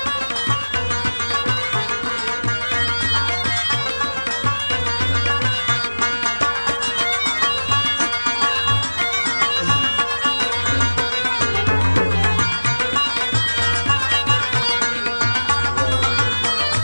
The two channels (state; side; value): inverted; both; correlation -1.00